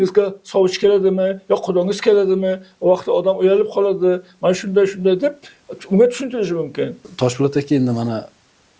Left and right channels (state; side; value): identical; both; correlation 1.00